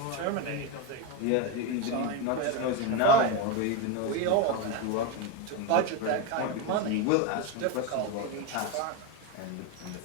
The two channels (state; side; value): different; both; correlation 0.04